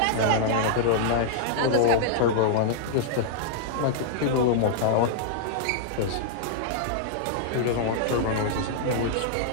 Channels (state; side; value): different; both; correlation -0.01